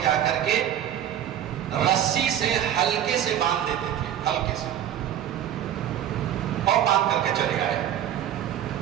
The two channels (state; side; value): quieter; left; 10.7 dB